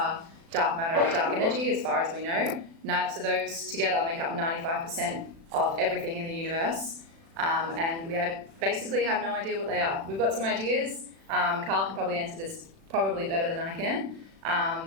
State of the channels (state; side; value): late; left; 36 ms